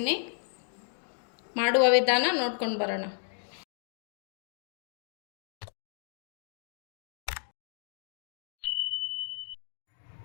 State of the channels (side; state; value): right; silent; 56 dB below the other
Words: ಮಾಡುವ ವಿಧಾನ ನೋಡ್ಕೊಂಡು ಬರೋಣ.